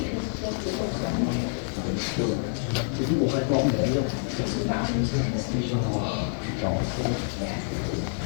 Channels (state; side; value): silent; right; digital silence